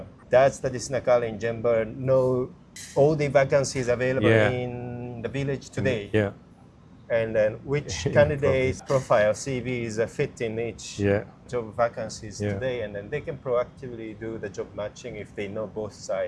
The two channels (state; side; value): identical; both; correlation 1.00